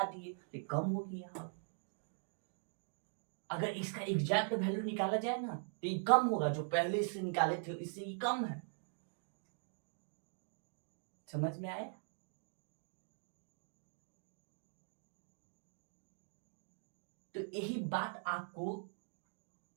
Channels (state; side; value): silent; left; digital silence